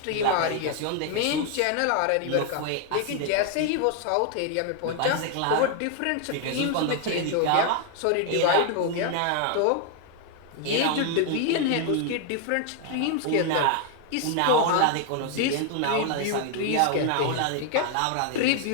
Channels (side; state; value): both; different; correlation 0.00